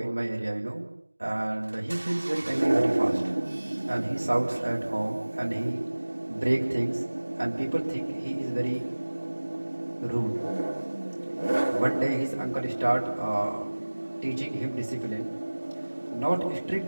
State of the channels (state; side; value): inverted; both; correlation -1.00